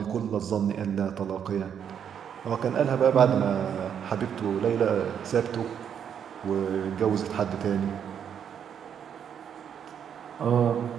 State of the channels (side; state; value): left; quieter; 8.3 dB